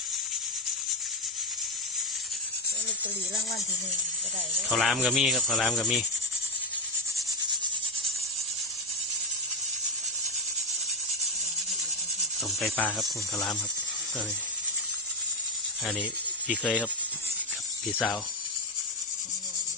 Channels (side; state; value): both; normal; correlation 0.02